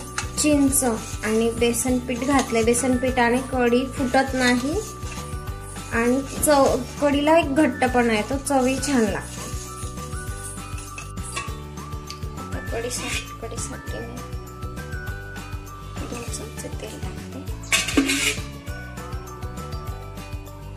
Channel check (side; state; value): both; identical; correlation 1.00